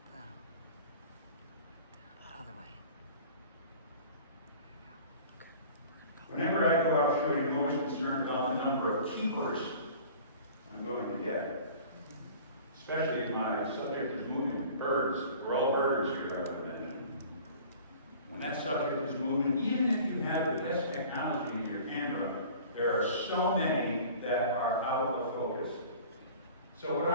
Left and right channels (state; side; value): inverted; both; correlation -0.45